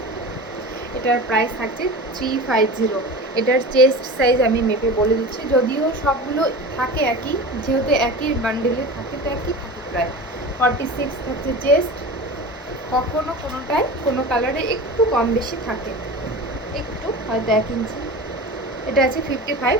এটার প্রাইস থাকছে 350। এটার চেস্ট সাইজ আমি মেপে বলে দিচ্ছি, যদিও সবগুলো থাকে একই, যেহেতু একই বান্ডেলে থাকে তো একই থাকে প্রায়। 46 থাকছে চেস্ট, কখনো কোনোটাই কোনো কালারে একটু কম বেশি থাকে, একটু হয়তো 1 ইঞ্চি। এটা আছে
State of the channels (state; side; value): normal; both; correlation 0.32